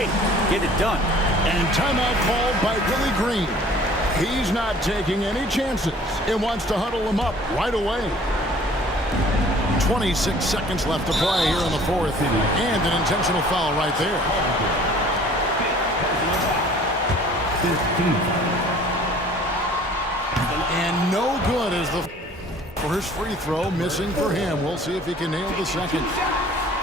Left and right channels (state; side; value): normal; both; correlation 0.51